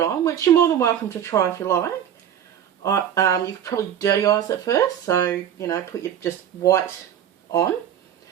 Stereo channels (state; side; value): quieter; left; 9.6 dB